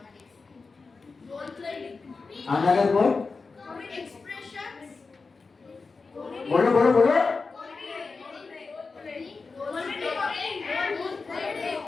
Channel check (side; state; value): right; quieter; 4.3 dB